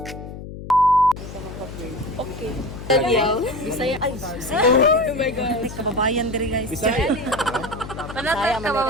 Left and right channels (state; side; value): noise; left; hum, 11 dB below the sound